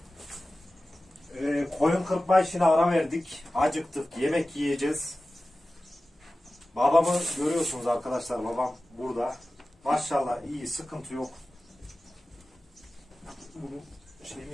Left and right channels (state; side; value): normal; both; correlation 0.96